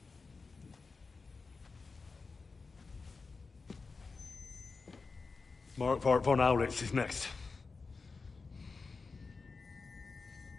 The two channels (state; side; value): quieter; right; 4.4 dB